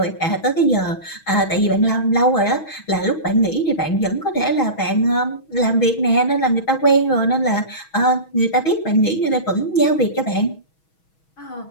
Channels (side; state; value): right; late; 6.2 ms